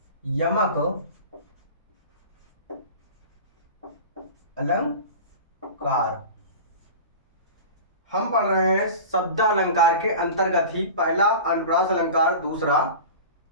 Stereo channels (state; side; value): inverted; both; correlation -0.34